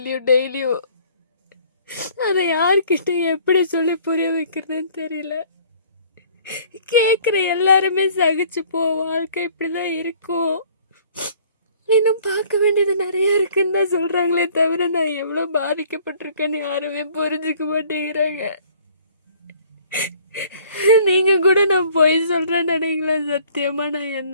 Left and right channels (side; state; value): both; inverted; correlation -0.55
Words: டெய்லியும். அதை யார்கிட்ட எப்படி சொல்லி புரிய வைக்கிறதுன்னு தெரியல. கேட்குற எல்லாருமே சகிச்சு போ, வாழ்க்கை இப்படி தான் இருக்கும், இன்னும் பார்க்க வேண்டியது நிறைய இருக்குன்னு தான் சொல்கிறாங்களே தவிர நான் எவ்வளோ பாதிக்கப்பட்டிருக்கேன்னு யாருமே புரிஞ்சுக்க மாட்டேங்கிறாங்க. நீங்கள் கூட நான் பொய் சொல்கிறேன்னு நினைக்கல. சத்தியமாக நான்